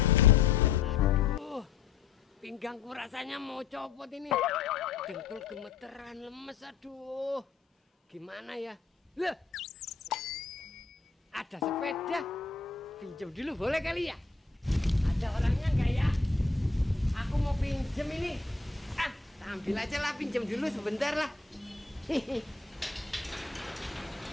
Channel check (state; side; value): quieter; right; 4.7 dB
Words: Aduh, pinggangku rasanya mau copot ini. Dengkul gemeteran, lemes, aduh. Gimana ya? Loh, ada sepeda. Pinjam dulu boleh kali ya? Ada orangnya nggak ya? Aku mau pinjem ini. Ah, ambil aja lah, pinjam dulu sebentar lah.